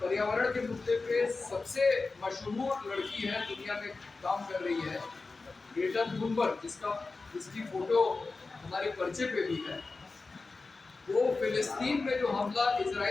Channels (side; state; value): right; quieter; 3.8 dB